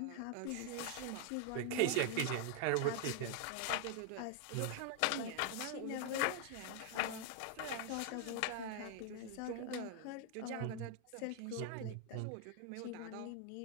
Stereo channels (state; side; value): different; both; correlation 0.00